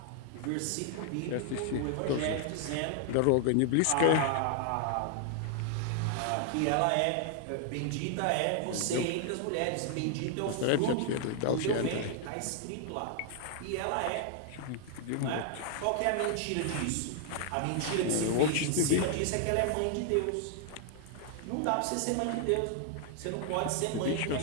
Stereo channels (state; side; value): different; both; correlation 0.00